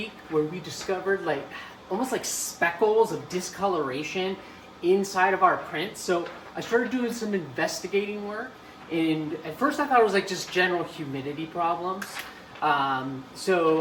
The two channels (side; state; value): both; identical; correlation 1.00